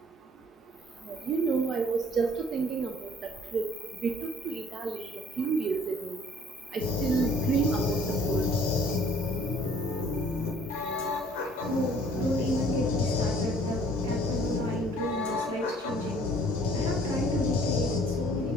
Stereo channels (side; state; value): both; normal; correlation 0.56